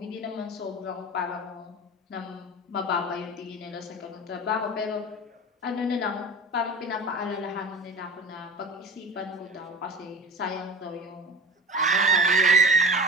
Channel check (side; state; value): both; normal; correlation 0.34